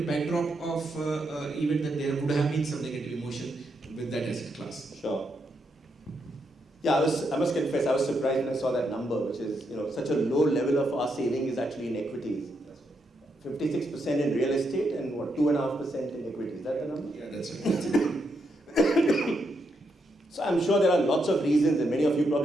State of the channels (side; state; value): both; normal; correlation 0.80